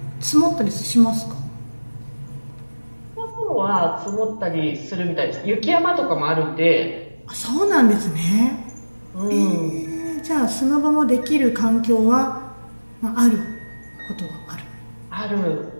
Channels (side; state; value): both; inverted; correlation -1.00